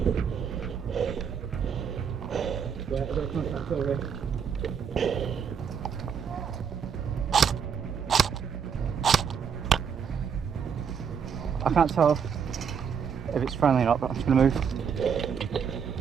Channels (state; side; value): quieter; left; 7.1 dB